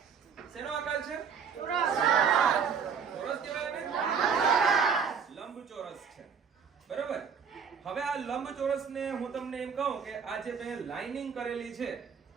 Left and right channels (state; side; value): quieter; left; 6.5 dB